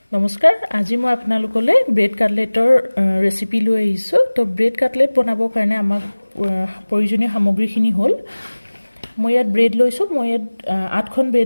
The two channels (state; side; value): inverted; both; correlation -1.00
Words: নমস্কাৰ আজি মই আপোনালোকলৈ ব্ৰেড কাটলেটৰ ৰেচিপি লৈ আহিছোঁ তো ব্ৰেড কাটলেট বনাবৰ কাৰণে আমাক প্ৰয়োজনীয় সামগ্ৰীখিনি হ'ল মই ইয়াত ব্ৰেড লৈছোঁ মই ইয়াত 8খন